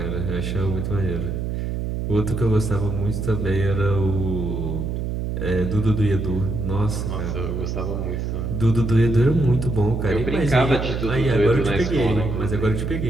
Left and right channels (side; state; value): right; noise; hum, 2 dB below the sound